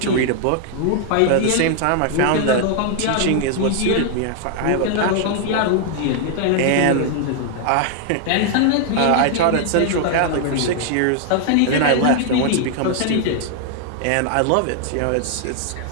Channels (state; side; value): different; both; correlation 0.00